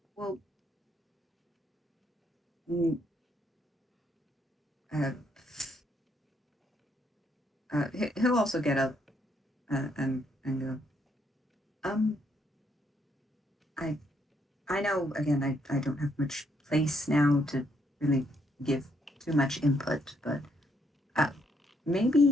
well, mm, uh, he'll also get up and go. Um, I I know again I don't have much place now to really give too much input, but uh,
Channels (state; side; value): normal; both; correlation 0.73